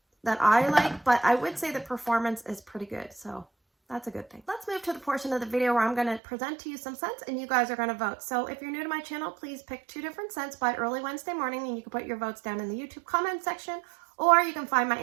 that I like, but I would say the performance is pretty good. So that's a good thing. Let's move to the portion of the video where I'm going to present to you some scents and you guys are going to vote. So if you're new to my channel, please pick 2 different scents by early Wednesday morning and you can put your votes down in the YouTube comment section, or you can find my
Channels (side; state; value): left; drops out; at 6.2 s